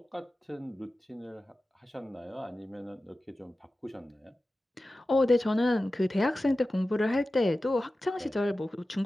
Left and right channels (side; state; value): both; normal; correlation 0.95